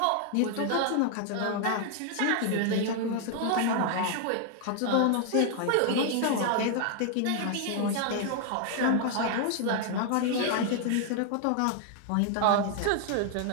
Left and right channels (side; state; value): both; different; correlation 0.00